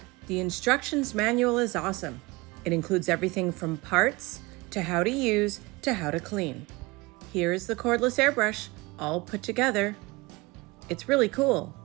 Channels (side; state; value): left; quieter; 23.6 dB